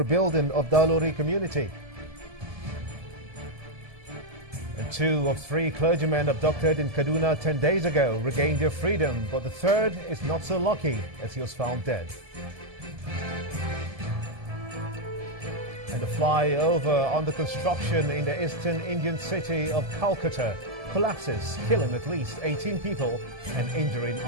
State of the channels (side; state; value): left; late; 1.7 ms